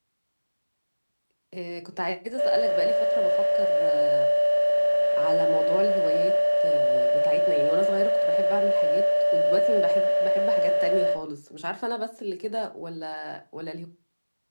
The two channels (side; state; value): both; inverted; correlation -1.00